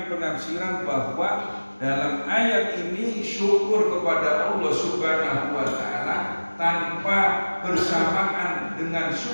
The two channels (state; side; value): inverted; both; correlation -1.00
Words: penafsiran bahwa dalam ayat ini syukur kepada Allah Subhanahu wa taala tanpa bersamaan dengan